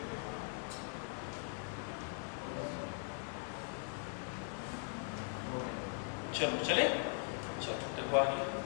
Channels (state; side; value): silent; right; 51 dB below the other